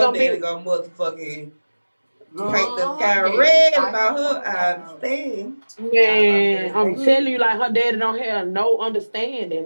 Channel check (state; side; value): inverted; both; correlation -1.00